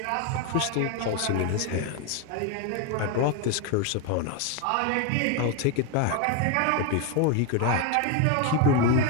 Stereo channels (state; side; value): different; both; correlation 0.01